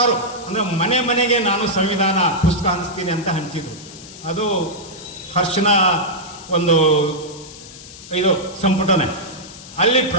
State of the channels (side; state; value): left; noise; hiss, 17 dB below the sound